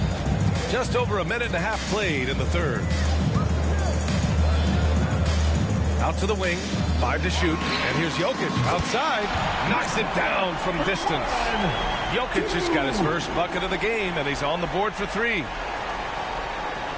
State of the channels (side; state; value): both; identical; correlation 1.00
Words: Just over a minute and a half played in the third. Out to the wing, 5 to shoot, and here's Jokic outside, knocks it down from distance. Jokic just got his first bucket of the game, and he's on the board for 3.